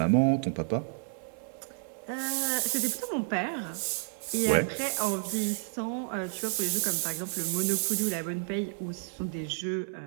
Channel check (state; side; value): silent; left; 57 dB below the other